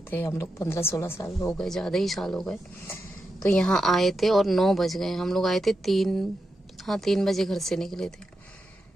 थे हम लोग। 15-16 साल हो गए, ज़्यादा ही साल हो गए। तो यहाँ आए थे और 9 बज गए। हम लोग आए थे 3 बजे घर से निकले थे।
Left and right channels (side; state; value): both; normal; correlation 0.88